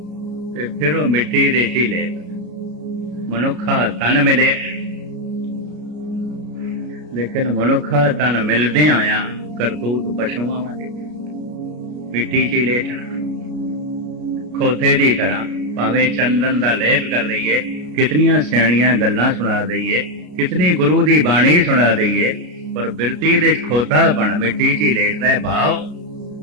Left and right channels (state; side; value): late; left; 33 ms